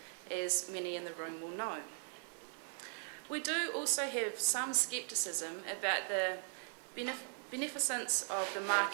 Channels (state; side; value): silent; left; 52 dB below the other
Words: as many in the room will know. We do also have some scepticism about the beneficence of the